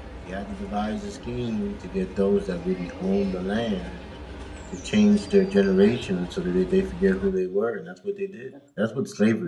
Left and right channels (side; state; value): both; identical; correlation 1.00